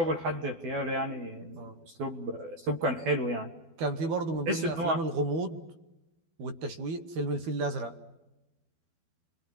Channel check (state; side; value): late; left; 12 ms